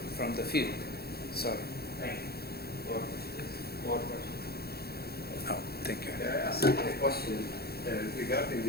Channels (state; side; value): late; right; 0.46 ms